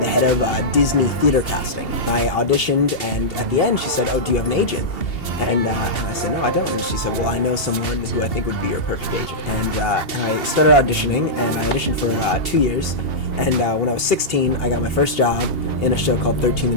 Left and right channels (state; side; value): late; right; 2.7 ms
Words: head of Disney theater casting. I auditioned, and at the end she said, "Oh, do you have an agent?" And I said, "No, I don't." And she said, "Well, I know someone who I think would be your perfect agent." And I started auditioning, and I auditioned for 2 years. And when I was 16, I got my first job in a show called 13 the